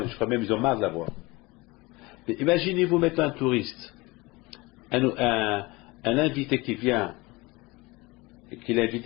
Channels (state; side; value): quieter; right; 23.1 dB